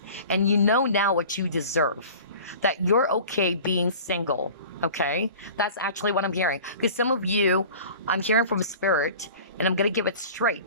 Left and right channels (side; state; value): both; inverted; correlation -0.41